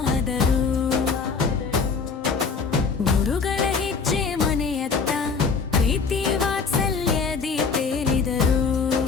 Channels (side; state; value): right; quieter; 5.2 dB